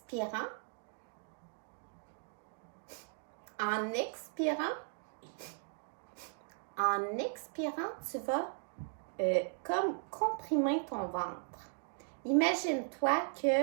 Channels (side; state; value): left; silent; 53 dB below the other